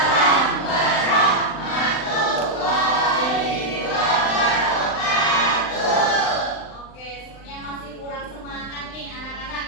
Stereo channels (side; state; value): right; late; 39 ms